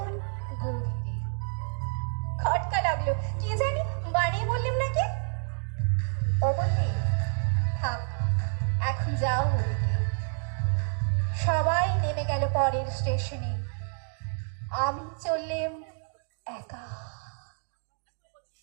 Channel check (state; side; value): silent; left; 59 dB below the other